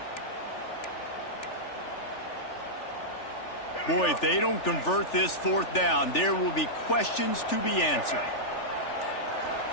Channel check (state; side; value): late; right; 3.4 ms